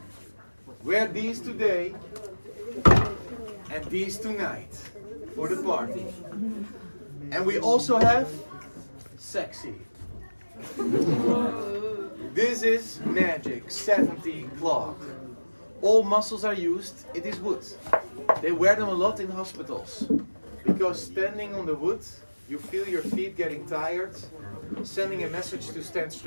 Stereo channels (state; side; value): inverted; both; correlation -1.00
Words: Wear these today and these tonight for the party. And we also have sexy. This is magic 70 clog. All muscles are used, it is wood. They wear them a lot in hospitals because standing on the wood, you feel your feet getting tired, sending a message to stand